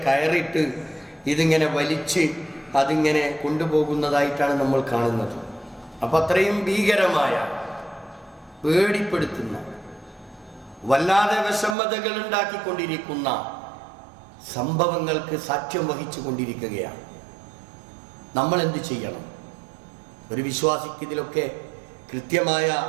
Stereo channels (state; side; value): drops out; left; at 11.8 s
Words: കയറിട്ട് ഇതിങ്ങനെ വലിച്ച് അതിങ്ങനെ കൊണ്ടുപോകുന്നതായിട്ടാണ് നമ്മൾ കാണുന്നത്. അപ്പം അത്രയും ഭീകരമായ, പേടിപ്പെടുത്തുന്ന, വല്ലാതെ വിഷമതകൾ ഉണ്ടാക്കിക്കൊണ്ടിരിക്കുന്ന സംഭവങ്ങൾക്ക് സാക്ഷ്യം വഹിച്ചു കൊണ്ടിരിക്കുകയാണ്. നമ്മൾ എന്ത് ചെയ്യണം? ഒരു വിശ്വാസിക്ക് ഇതിലൊക്കെ കൃത്യമായ